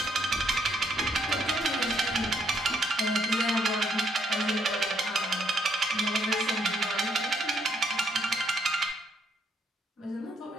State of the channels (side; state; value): both; normal; correlation 0.72